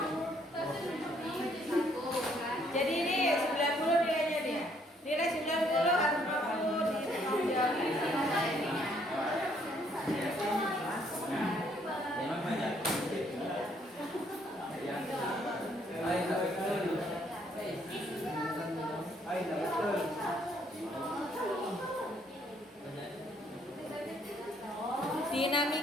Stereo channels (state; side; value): normal; both; correlation 0.67